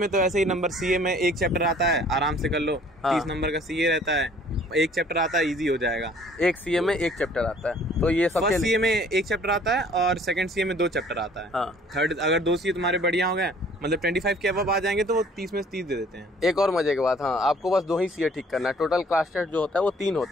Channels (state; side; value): normal; both; correlation 0.56